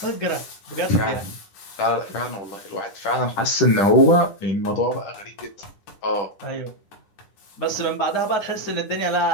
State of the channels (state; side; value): late; right; 10 ms